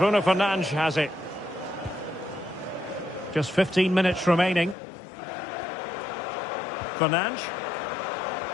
Fernandes has it. Just 15 minutes remaining. Fernandes.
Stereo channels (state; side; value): drops out; right; at 4.8 s